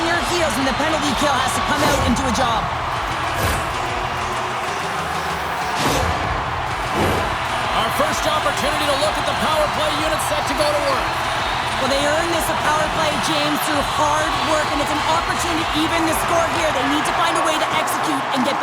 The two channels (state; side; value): identical; both; correlation 1.00